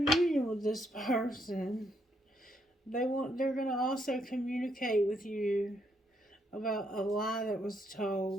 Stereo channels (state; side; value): normal; both; correlation 0.75